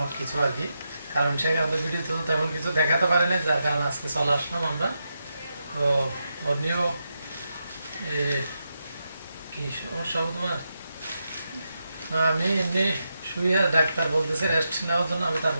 কিছু আর কি। কারণ সেখানে তো ভিডিওতে তো তেমন কিছু দেখাতে পারি না, যার কারণে আজকে চলে আসলাম আমরা। তো অন্যও কি সমস্যা হবে তোমার? না, আমি এমনি শুয়ে, ডাক্তার বলতেছে রেস্ট নেওয়ার জন্য, আমি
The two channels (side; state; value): both; inverted; correlation -0.86